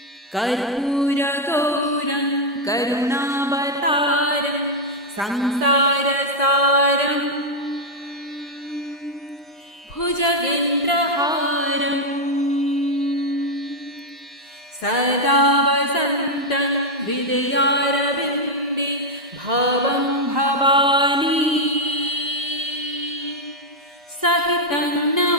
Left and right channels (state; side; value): normal; both; correlation 0.00